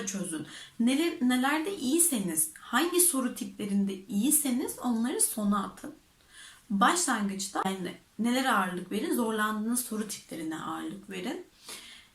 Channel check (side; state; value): both; identical; correlation 1.00